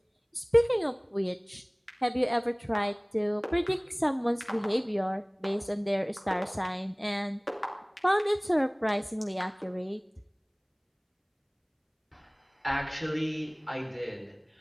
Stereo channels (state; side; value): identical; both; correlation 1.00